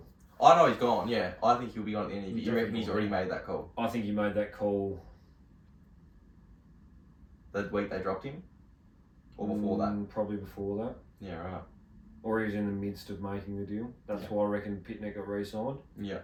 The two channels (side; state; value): both; identical; correlation 1.00